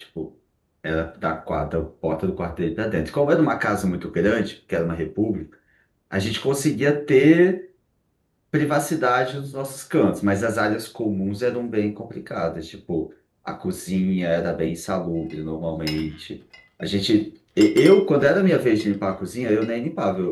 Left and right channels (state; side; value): identical; both; correlation 1.00